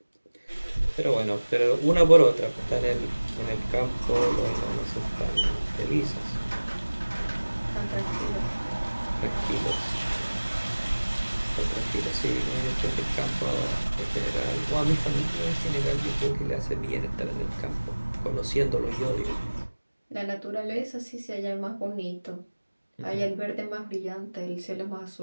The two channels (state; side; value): inverted; both; correlation -1.00